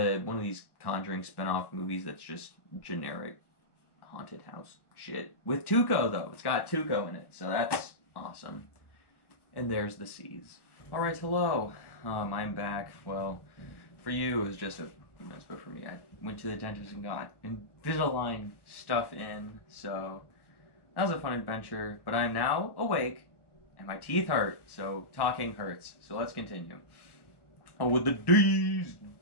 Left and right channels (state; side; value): late; right; 1.2 ms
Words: of these Conjuring spin-off movies that's just generic haunted house shit. With Tuco, though. It's got Tuco in it, so that's awesome. And there's the Seas. Alright, hello. I'm back. Well, for you, it was just a few minutes, but for me, I went to the dentist and got Invisalign stuff in, so that was a fun adventure. But I'm now awake, and my teeth hurt, so talking hurts. So let's continue. Oh, with the D's.